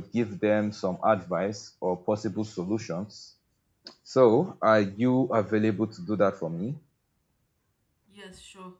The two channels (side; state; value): both; identical; correlation 1.00